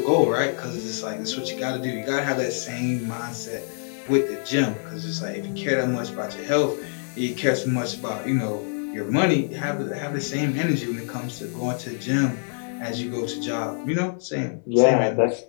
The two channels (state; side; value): silent; right; 62 dB below the other